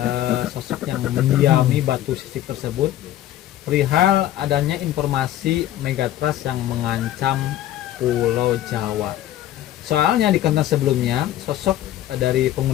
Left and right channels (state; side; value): quieter; right; 12.9 dB